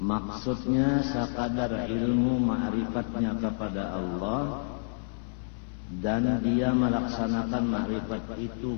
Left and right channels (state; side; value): silent; right; 59 dB below the other